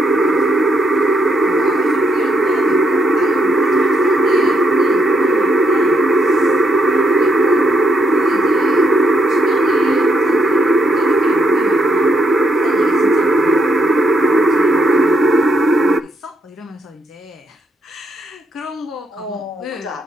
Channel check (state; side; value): normal; both; correlation 0.77